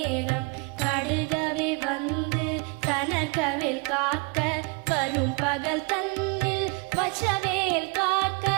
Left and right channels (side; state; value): left; quieter; 30.2 dB